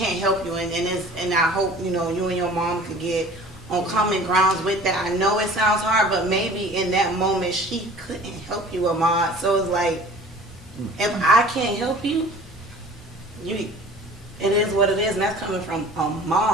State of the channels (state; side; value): normal; both; correlation 0.46